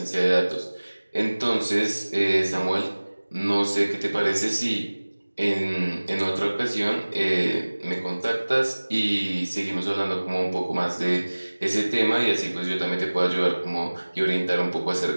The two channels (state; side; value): inverted; both; correlation -1.00